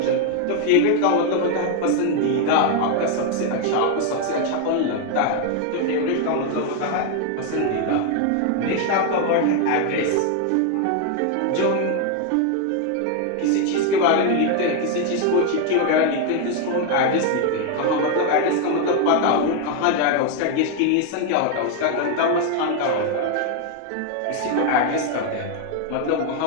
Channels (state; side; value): different; both; correlation 0.01